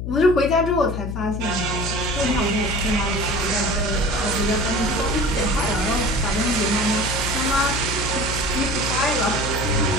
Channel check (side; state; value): left; noise; hum, 5 dB below the sound